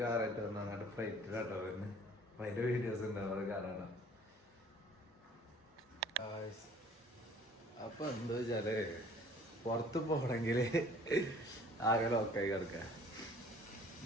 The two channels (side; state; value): both; normal; correlation 0.53